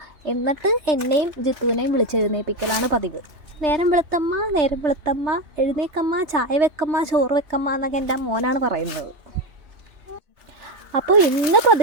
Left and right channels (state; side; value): late; left; 3.1 ms